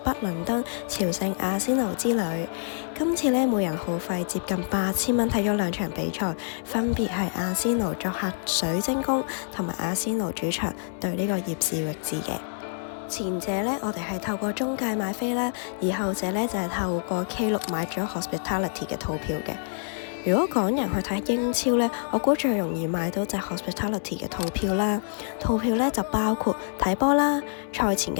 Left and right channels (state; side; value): silent; right; digital silence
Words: 倫敦朝聖阿仙奴之旅。今次呢，每人耗費接近8000蚊睇咗兩場比賽，分別係阿仙奴作客水晶宮同埋阿仙奴主場對呢個葉士域治嘅。前者呢，我哋係透過中介買飛啦，而後者呢，就係透過 K6 買咗 Hospitality 嘅套票嘅。如果港人去睇英超呢，我估最容易買到就係 Hospitality 嘅套票啦。套票呢就包括睇波啦、賽前